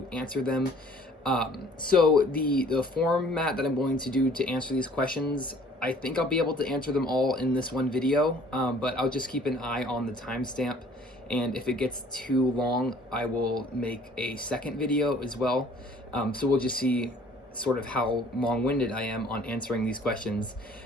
answer them. So the format that I'm going to do to answer these questions, I think I'll be able to answer them all in this one video, but I'll just keep an eye on the timestamp, and if it gets too long, I will make a second video as well. So we'll just see sort of how long-winded I am on answering these questions.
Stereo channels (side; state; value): both; normal; correlation 0.55